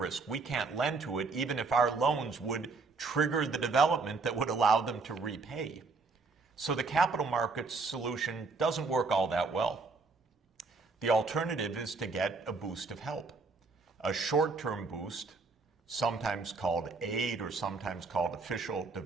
We can't lend to it, even if our loans would trigger the development that would allow them to repay. So the capital markets solution doesn't work all that well. The alternative is to get a boost of help, a short-term boost, sometimes called aid or sometimes called official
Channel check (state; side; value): quieter; left; 4.1 dB